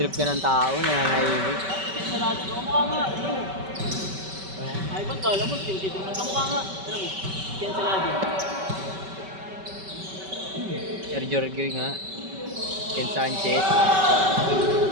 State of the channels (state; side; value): late; left; 5.2 ms